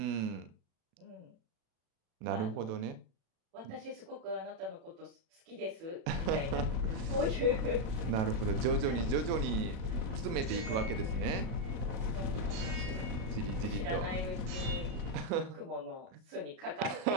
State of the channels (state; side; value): late; left; 36 ms